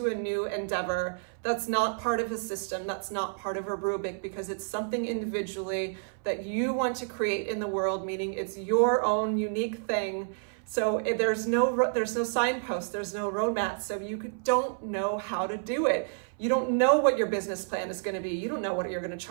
a new endeavor, that's not part of a system, that's not part of a rubric, because it's something individually that you want to create in the world, meaning it's your own unique thing. So there's no signpost, there's no roadmap, so you don't know how to do it. You don't know what your business plan is going to be. You don't know what you're going to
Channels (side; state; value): left; silent; 58 dB below the other